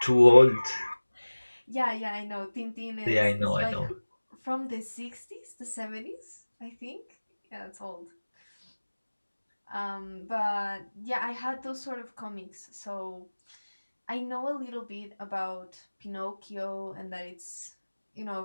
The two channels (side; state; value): both; inverted; correlation -1.00